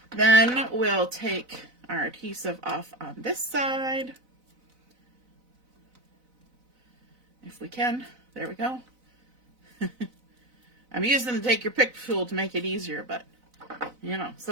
Then we'll take our adhesive off on this side. If we can. There we go. I'm using the take your pick tool to make it easier, but you know,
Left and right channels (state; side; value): late; left; 4.0 ms